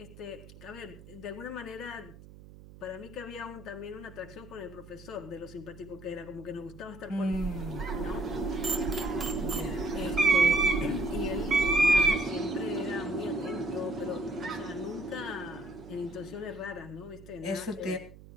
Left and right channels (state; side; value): noise; right; hum, 19 dB below the sound